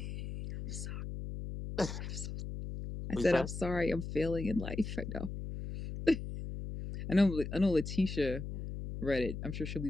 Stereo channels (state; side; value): noise; left; hum, 7 dB below the sound